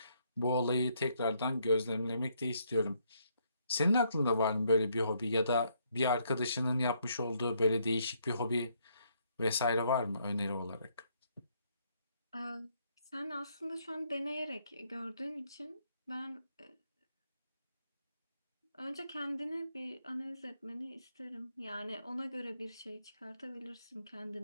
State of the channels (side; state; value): both; inverted; correlation -0.72